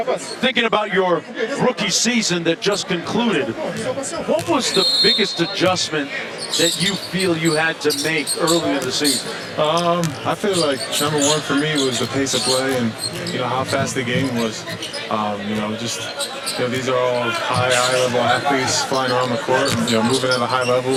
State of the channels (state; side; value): identical; both; correlation 1.00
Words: thinking about your rookie season that just concluded, what was the biggest adjustment that you feel you had to make early in the season? I feel like number one for me was the pace of play and how fast the game was. These are all high-level athletes flying around the court, moving at a high